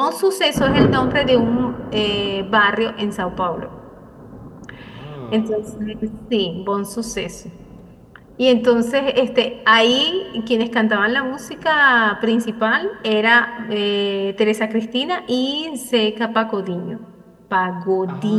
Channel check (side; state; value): both; identical; correlation 1.00